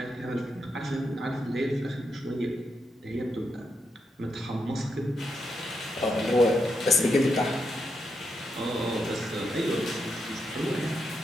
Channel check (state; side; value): normal; both; correlation 0.83